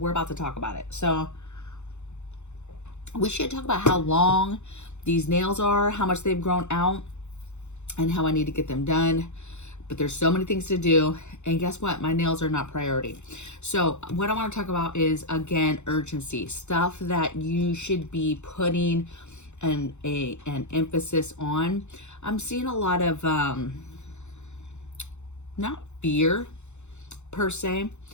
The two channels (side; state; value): right; late; 0.83 ms